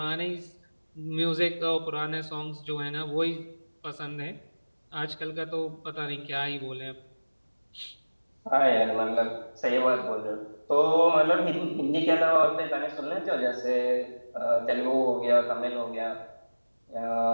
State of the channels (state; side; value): inverted; both; correlation -1.00